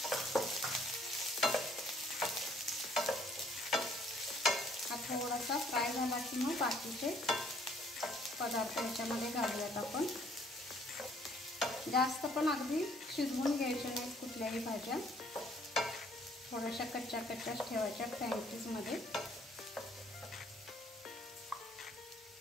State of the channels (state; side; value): normal; both; correlation 0.62